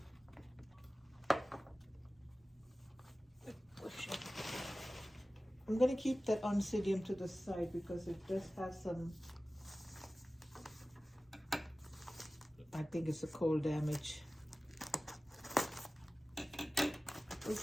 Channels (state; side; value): normal; both; correlation 0.96